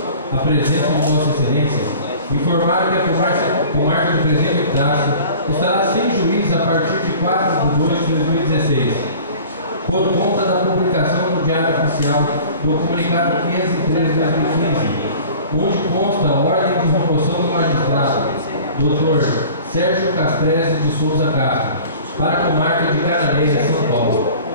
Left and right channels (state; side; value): inverted; both; correlation -0.44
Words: a presença de Vossa Excelência, informar que a comarca do Presidente do Estado estará sem juiz a partir de 4 de 2 de 2016, por conta da publicação no Diário Oficial do Comunicado 503 de 2015, onde consta a ordem de remoção do magistrado, Dr. Sérgio Castrese de Souza Castro, para a comarca de Cananéia, São Paulo.